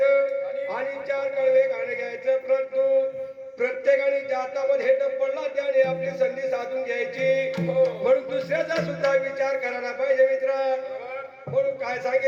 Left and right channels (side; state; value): both; identical; correlation 1.00